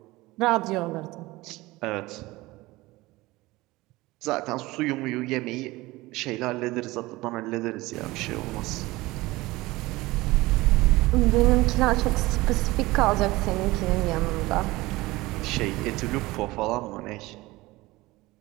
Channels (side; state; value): left; quieter; 20.1 dB